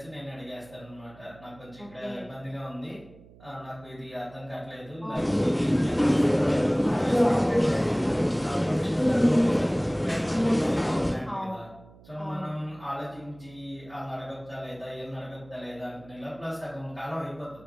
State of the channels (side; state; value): right; noise; hum, 23 dB below the sound